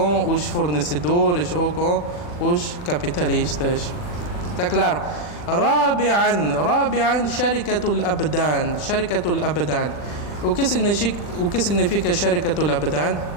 os fornecedores ou com os capitalistas. Está claro? Rabi'an Sharikatul Abdan. Sharikatul Abdan. O que significa Sharikatul Abdan?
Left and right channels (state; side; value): late; right; 40 ms